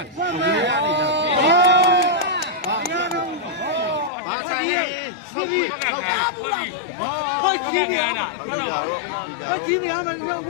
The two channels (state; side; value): drops out; right; at 4.1 s